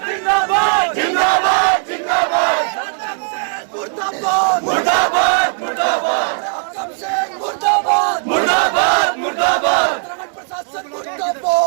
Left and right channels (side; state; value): left; silent; 58 dB below the other